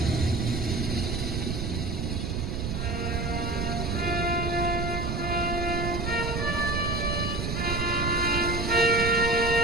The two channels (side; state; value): right; noise; rumble, 1 dB below the sound